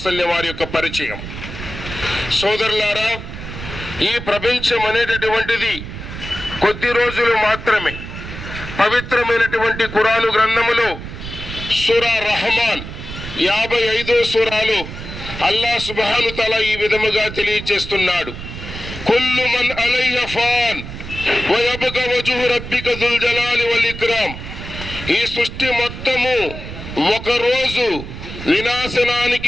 వసల్లం వారి యొక్క పరిచయం. సోదరులారా, ఈ ప్రపంచం అనేటటువంటిది కొద్ది రోజులు మాత్రమే. పవిత్రమైనటువంటి ఖురాను గ్రంథములో సూరా రహమాన్ 55వ సూరాలో అల్లా సుబ్హాను తఆలా ఈ విధముగా తెలియజేస్తున్నాడు. కుల్లు మన్ అలైహా ఫాన్ వ యబ్కా వజ్హు రబ్బిక దుల్ జలాలి వల్ ఇక్రామ్. ఈ సృష్టి మొత్తము ఒకరోజు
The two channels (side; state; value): right; noise; rumble, 10 dB below the sound